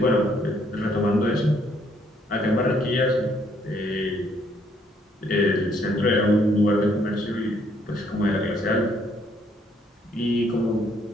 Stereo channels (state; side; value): normal; both; correlation 0.68